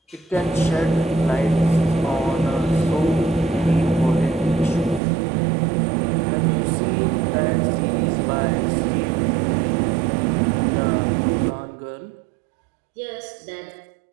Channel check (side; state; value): left; drops out; at 5.0 s